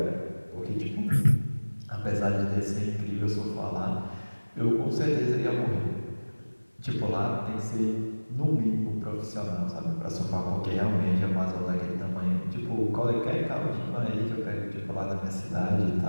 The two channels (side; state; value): both; inverted; correlation -1.00